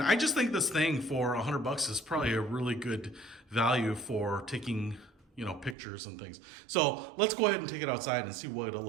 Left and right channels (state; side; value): drops out; left; at 5.8 s